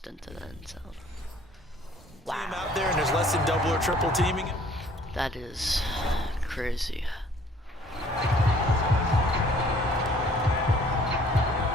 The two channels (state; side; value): normal; both; correlation 0.57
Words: into the end zone. Wow. Out there and there's less than double or triple teaming. That is crazy.